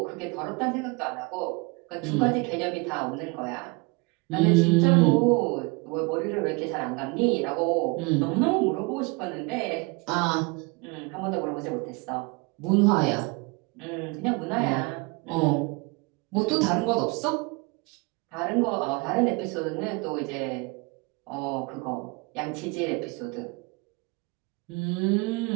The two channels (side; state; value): left; quieter; 28.4 dB